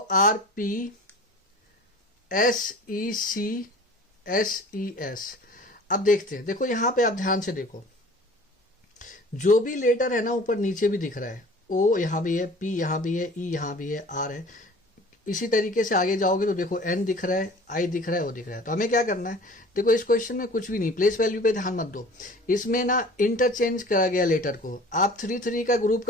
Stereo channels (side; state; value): both; normal; correlation 0.45